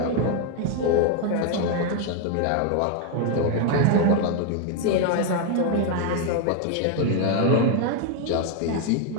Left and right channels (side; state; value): both; different; correlation 0.01